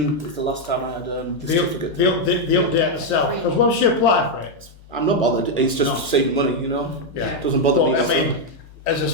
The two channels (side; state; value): both; normal; correlation 0.01